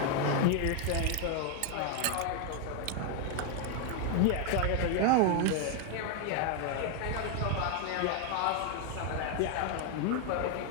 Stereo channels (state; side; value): different; both; correlation 0.00